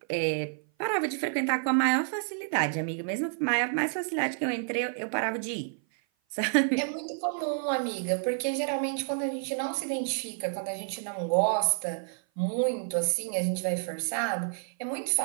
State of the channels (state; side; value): silent; left; 55 dB below the other